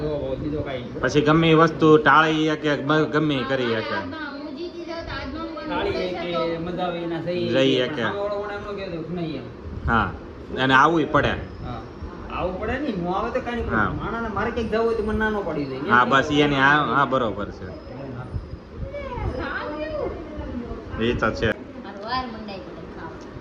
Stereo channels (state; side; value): identical; both; correlation 1.00